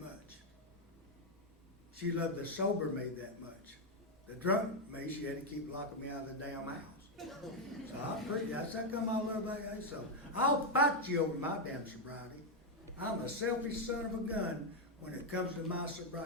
She loved the sober me that much. The drunk me, she had to keep locking me out of the damn house. So that's how come I love AA. So I'll fight you over my damn sobriety. I'm a selfish son of a gun when it comes to my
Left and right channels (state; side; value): normal; both; correlation 0.02